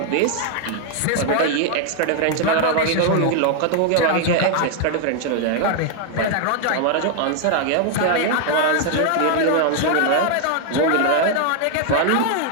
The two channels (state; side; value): different; both; correlation 0.00